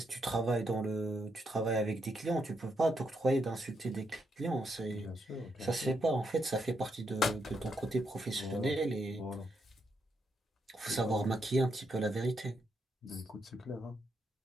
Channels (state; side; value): normal; both; correlation 0.79